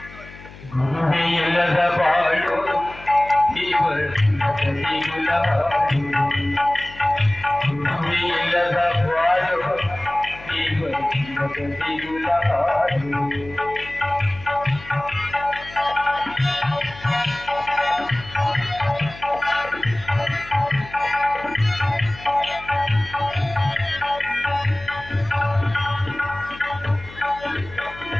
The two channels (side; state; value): left; noise; hum, 18 dB below the sound